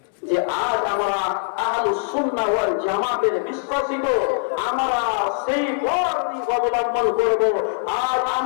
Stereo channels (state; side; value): silent; right; digital silence